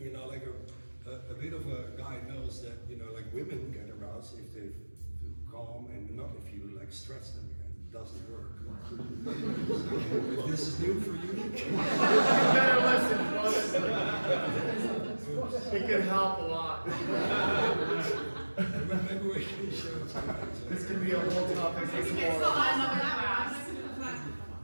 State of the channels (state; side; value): inverted; both; correlation -1.00